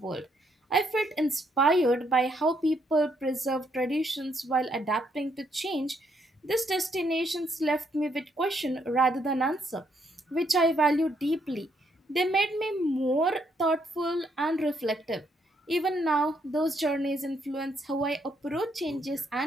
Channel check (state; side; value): normal; both; correlation 0.73